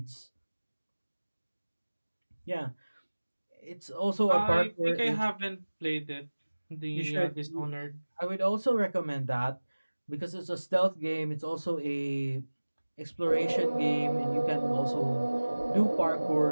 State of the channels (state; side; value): inverted; both; correlation -1.00